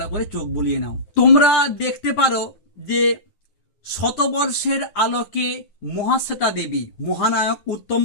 করে চোখ বুলিয়ে নাও। তোমরা দেখতে পারো যে শতবর্ষের আলোকে মহাশ্বেতা দেবী, মহানায়ক উত্তম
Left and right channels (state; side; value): late; right; 9.5 ms